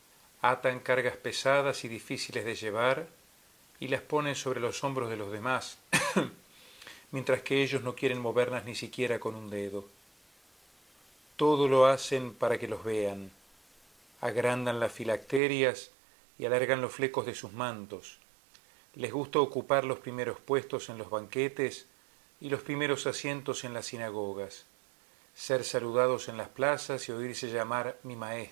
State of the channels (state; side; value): drops out; left; at 15.4 s